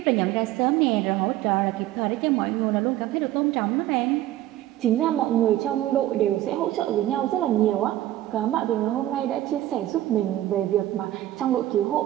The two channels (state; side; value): quieter; left; 14.2 dB